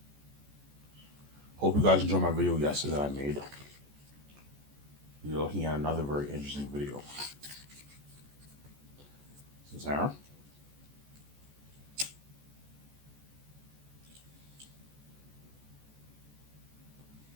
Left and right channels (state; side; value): late; left; 14 ms